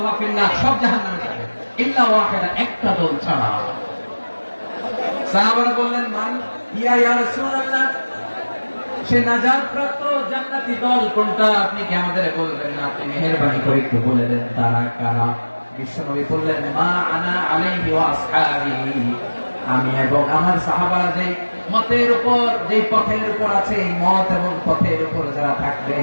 ফিন্নার, সব জাহান্নামে যাবে, ইল্লা ওয়াহিদা, একটা দল ছাড়া। সাহাবারা বললেন, মান ইয়া রাসূলুল্লাহ, সে নাজাত প্রাপ্ত জান্নাতি দল কোনটা আপনি কি আমাদের বলবেন না? আপনি মেহেরবানি করে একটু বলে দেন তারা কারা। বিশ্বনবী বললেন, মা আনা আলাইহি ওয়া আসহাবি, আমি এবং আমার সাহাবারা যে মতের উপর, যে পথের উপর আছে, এই মত এবং পথের উপর যারা থাকবে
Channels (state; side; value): inverted; both; correlation -1.00